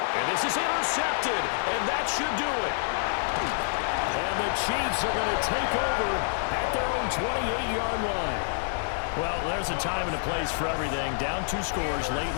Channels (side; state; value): right; silent; digital silence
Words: And this is intercepted, and that should do it. And the Chiefs are going to take over at their own 28-yard line. Well, there's a time and a place for everything. Down 2 scores late